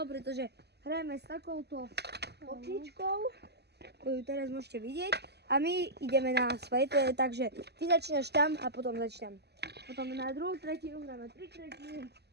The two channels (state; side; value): late; left; 0.48 ms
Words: pretože hrajeme s takouto optičkou, ktorú teraz môžete vidieť. A my ideme na svetle, takže ty začínaš tam a potom začínam. Potom na druhú tretinu, dáme 3 tretiny